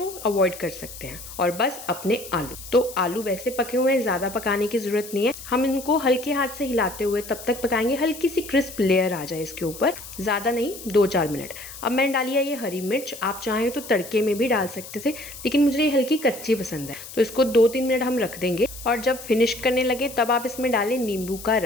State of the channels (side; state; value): left; noise; hiss, 14 dB below the sound